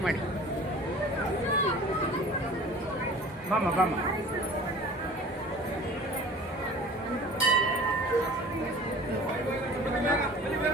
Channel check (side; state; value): both; normal; correlation 0.44